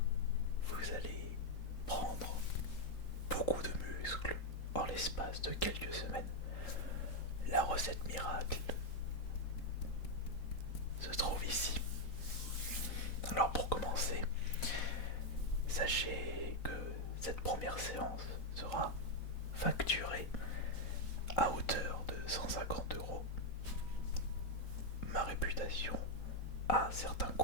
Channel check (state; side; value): late; right; 3.8 ms